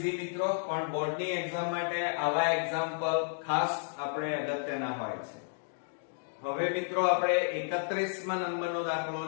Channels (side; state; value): right; silent; digital silence